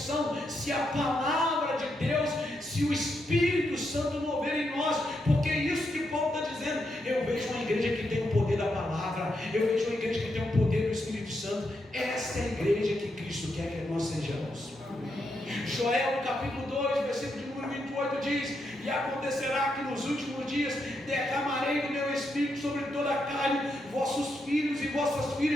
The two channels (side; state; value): both; normal; correlation 0.82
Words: se a palavra de Deus, se o Espírito Santo mover em nós. Porque é isso que Paulo está dizendo. Eu vejo uma igreja que tem o poder da palavra, eu vejo uma igreja que tem o poder do Espírito Santo. Essa é a igreja que Cristo quer que nós sejamos. Joel capítulo 2, versículo de número 28 diz: e acontecerá que nos últimos dias derramarei do meu Espírito sobre toda a carne. Vossos filhos e vossas